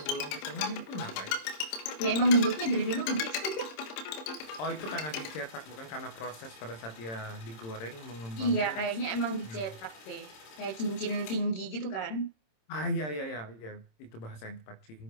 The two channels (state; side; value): late; right; 26 ms